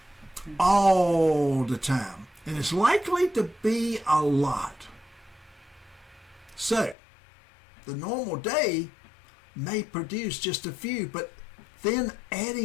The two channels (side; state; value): right; drops out; at 7.0 s